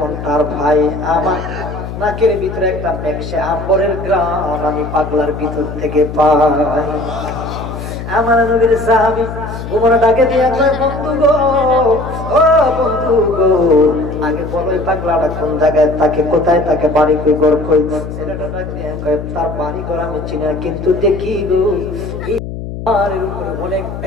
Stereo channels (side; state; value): left; noise; hum, 8 dB below the sound